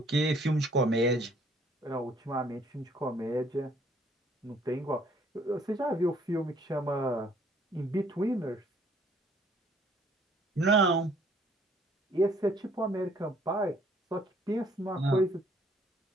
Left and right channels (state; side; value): normal; both; correlation 0.62